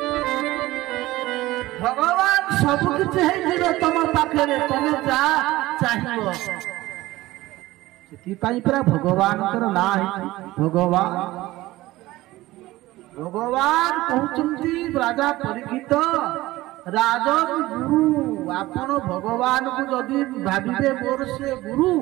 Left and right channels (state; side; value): quieter; left; 17.9 dB